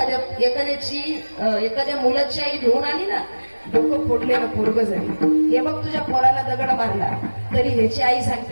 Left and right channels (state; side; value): inverted; both; correlation -1.00